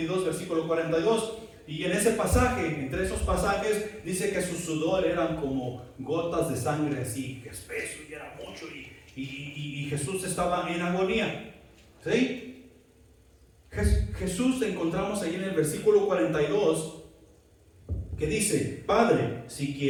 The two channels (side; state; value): both; identical; correlation 1.00